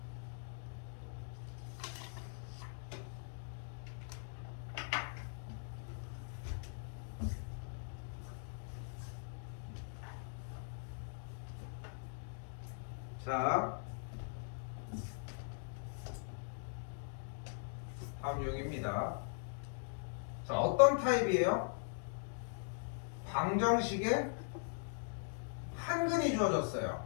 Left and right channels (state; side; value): silent; right; digital silence